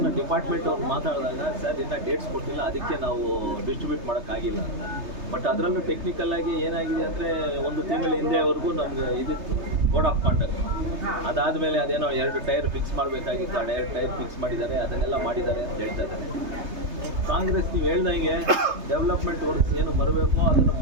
ಡಿಪಾರ್ಟ್ಮೆಂಟ್ ಅವ್ರು ಮಾತಾಡಿದಾಗ, ಸರ್ ಇನ್ನೂ ಡೇಟ್ಸ್ ಕೊಟ್ಟಿಲ್ಲ, ಅದಕ್ಕೆ ನಾವು ಡಿಸ್ಟ್ರಿಬ್ಯೂಟ್ ಮಾಡೋಕ್ಕಾಗಿಲ್ಲ ಅಂತ. ಬಟ್ ಅದರಲ್ಲೂ ಟೆಕ್ನಿಕಲ್ ಆಗಿ ಏನಾಗಿದೆ ಅಂದರೆ 1 ತಿಂಗಳ ಹಿಂದೆವರೆಗೂ ನಮ್ಗೆ ಇದಿತ್ತು ಕೋಡ್ ಆಫ್ ಕಾಂಡಕ್ಟ್. ಅದಾದಮೇಲೆ ಅದೇನೋ 2 ಟೈರ್ ಫಿಕ್ಸ್ ಮಾಡಬೇಕಾಗಿತ್ತು, ಆ 2 ಟೈರ್ ಫಿಕ್ಸ್ ಮಾಡಿದ್ದಾರೆ, ಅದನ್ನೆಲ್ಲ ಮಾಡಿದ್ದಾರೆ ಅಂತ ಹೇಳ್ತಾ ಇದ್ದಾರೆ. ಕಾಂಗ್ರೆಸ್ ನೀವು ಹೇಳ್ದಂಗೆ ಡೆವಲಪ್ಮೆಂಟ್ ವರ್ಕ್ಸ್ ಏನು ಬರಬೇಕು ಅದನ್ನು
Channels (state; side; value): late; left; 3.3 ms